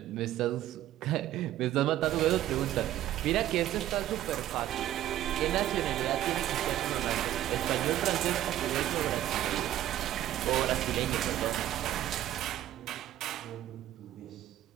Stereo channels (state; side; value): quieter; left; 13.0 dB